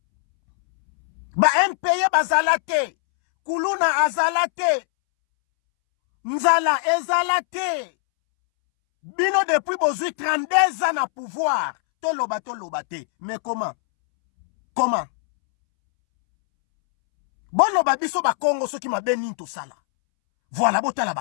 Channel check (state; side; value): silent; right; 64 dB below the other